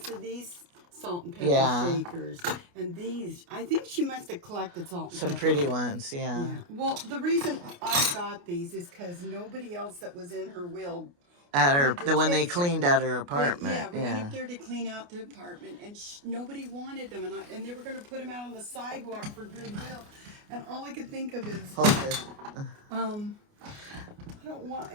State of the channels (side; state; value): left; late; 29 ms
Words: of these salt and pepper Yeah. shakers. And these, I think she must have collected salt and some pepper. pretty ones. Yeah. Yeah. Well, the reason I got these is because nobody else that was in her will. At her, wanted to when they take them. cleaned out her apartment. Yeah, we Yeah. went up there to clean out the apartment, and nobody wanted them, and they were going to put them out on the sidewalk for goodwill. And all I could think of is, Hold this. I don't want